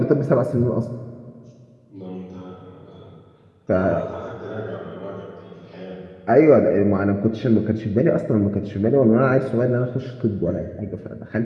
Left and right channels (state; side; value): identical; both; correlation 1.00